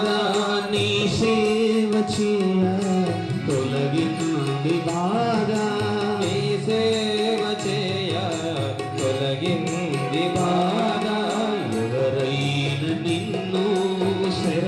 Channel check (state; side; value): identical; both; correlation 1.00